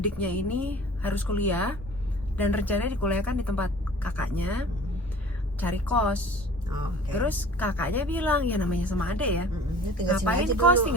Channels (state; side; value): normal; both; correlation 0.45